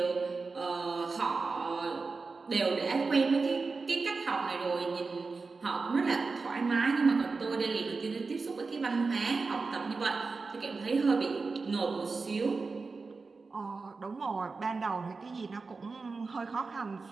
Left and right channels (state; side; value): quieter; left; 4.2 dB